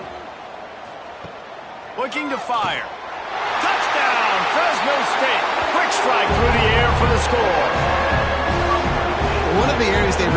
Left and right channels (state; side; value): identical; both; correlation 1.00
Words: Looking to fire. Touchdown, Fresno State. Quick strike through the air for the score. One of the areas they